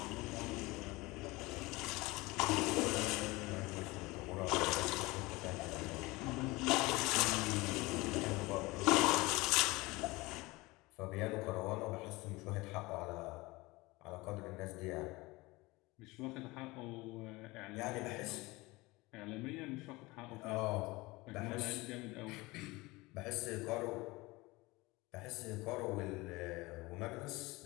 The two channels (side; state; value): right; quieter; 22.2 dB